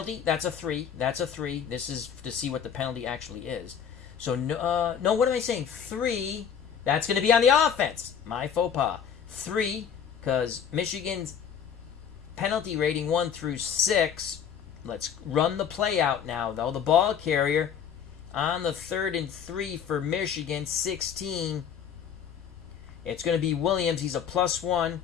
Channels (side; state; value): right; quieter; 7.8 dB